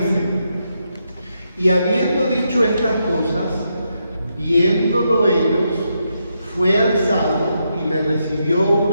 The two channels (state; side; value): inverted; both; correlation -0.82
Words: y habiendo dicho estas cosas, viéndolo ellos, fue alzado y le recibió